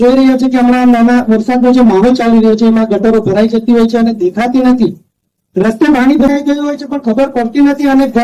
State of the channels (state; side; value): identical; both; correlation 1.00